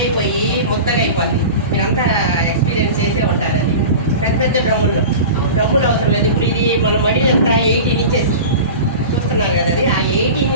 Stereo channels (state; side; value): inverted; both; correlation -0.33